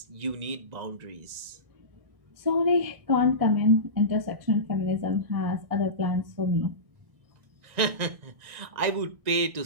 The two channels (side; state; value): left; late; 1.9 ms